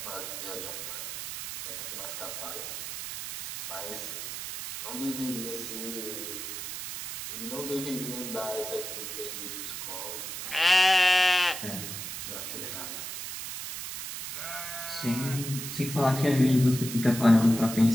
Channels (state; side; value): noise; right; hiss, 7 dB below the sound